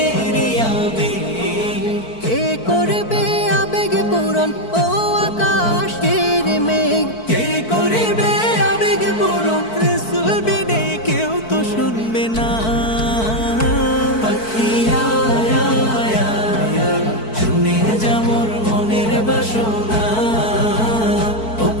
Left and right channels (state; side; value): late; right; 4.5 ms